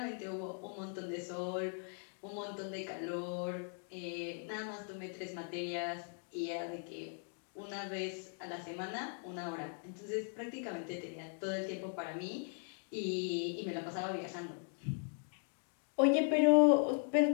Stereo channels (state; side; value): silent; right; 52 dB below the other